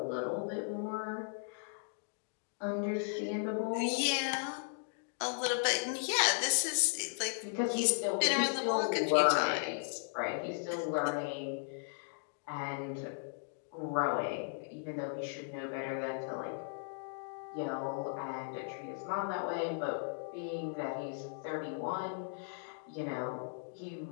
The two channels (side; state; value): right; silent; digital silence